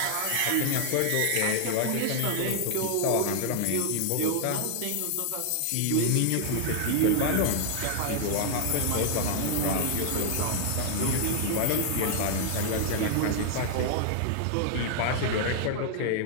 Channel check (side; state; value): both; different; correlation 0.00